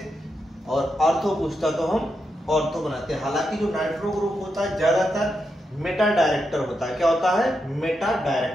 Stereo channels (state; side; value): normal; both; correlation 0.85